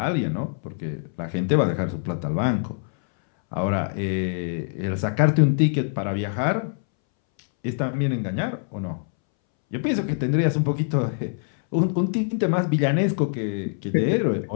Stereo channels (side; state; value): right; silent; 62 dB below the other